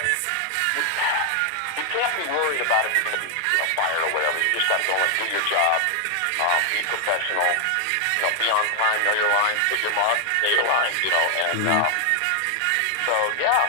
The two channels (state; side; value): different; both; correlation 0.00